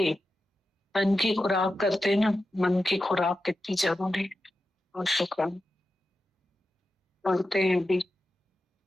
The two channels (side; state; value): both; normal; correlation 0.91